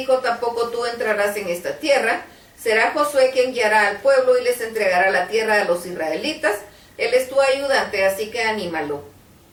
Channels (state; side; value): identical; both; correlation 1.00